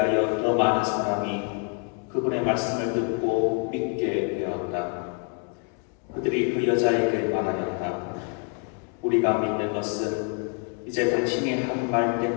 더 많은 사람이 그분의 말씀을 듣고 믿게 되었다. 그들이 그 여자에게 말하였다. 우리가 믿는 것은 이제 당신이 한 말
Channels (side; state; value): right; quieter; 37.6 dB